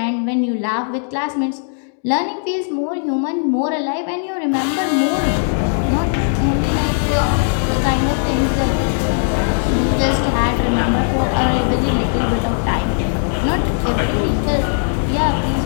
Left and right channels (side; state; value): right; silent; digital silence